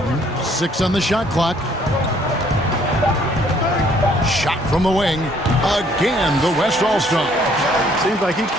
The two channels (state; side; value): normal; both; correlation 0.62